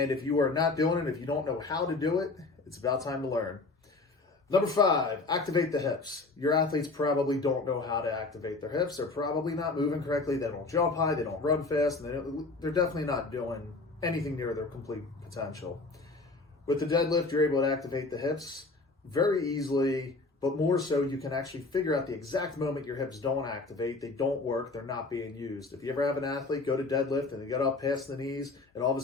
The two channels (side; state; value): right; quieter; 3.5 dB